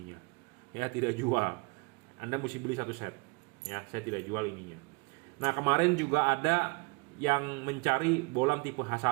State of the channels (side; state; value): left; quieter; 29.6 dB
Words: Ya tidak jual. Anda mesti beli 1 set. Ya, saya tidak jual ininya. Nah kemarin juga ada yang mencari bolam tipe